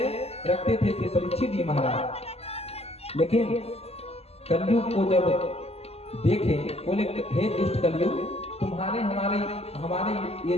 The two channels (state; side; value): late; right; 0.29 ms